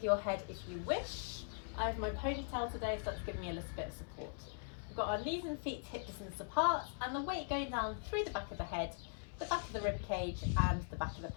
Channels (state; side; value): silent; right; 51 dB below the other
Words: your head if you wish. I have my ponytail today, so that's giving me a little bit of support. We've got our knees and feet hip distance apart, and the weight going down through the back of the head, the back of the rib cage and the back of the